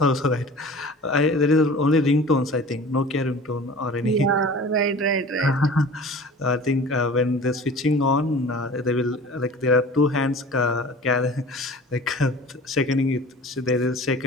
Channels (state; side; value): normal; both; correlation 0.41